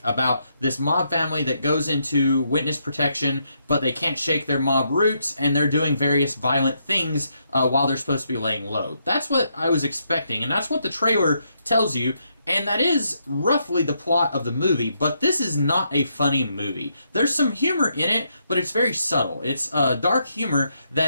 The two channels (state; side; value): inverted; both; correlation -0.78